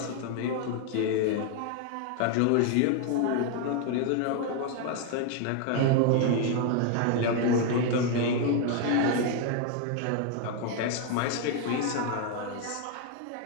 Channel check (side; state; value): both; different; correlation 0.01